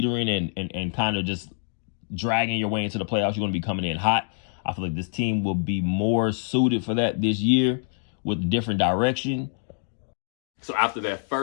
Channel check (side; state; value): right; silent; 61 dB below the other